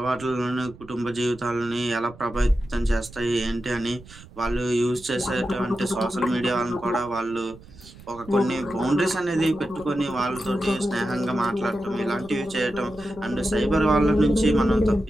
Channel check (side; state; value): right; noise; rumble, 20 dB below the sound